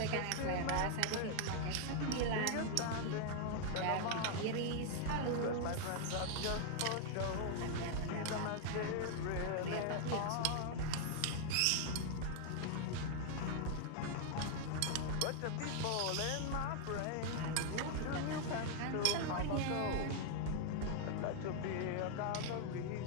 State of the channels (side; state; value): both; different; correlation 0.00